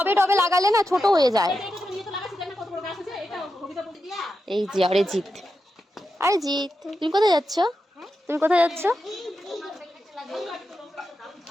টবে লাগালে না ছোট হয়ে যায়। এই যে আরে জিৎ, আরে জিৎ, তুমি কোথায় যাচ্ছ? তুমি কোথায় যাচ্ছ?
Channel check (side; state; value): both; normal; correlation 0.88